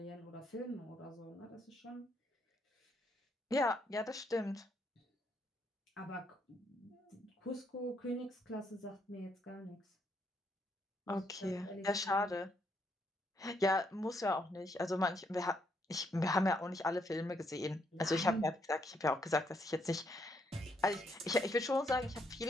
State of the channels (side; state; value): both; normal; correlation 0.74